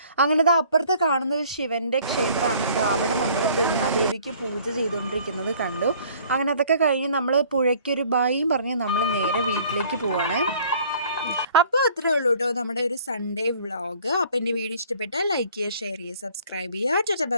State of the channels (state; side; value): inverted; both; correlation -0.55